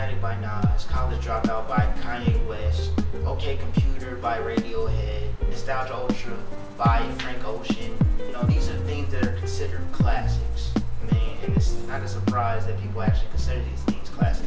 by Nas, College Dropout by Kanye West, OK Computer by Radiohead, Nostalgia Ultra by Frank Ocean. These are things that are considered classics. And it's not a surprise that people actually consider these things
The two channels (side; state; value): both; identical; correlation 1.00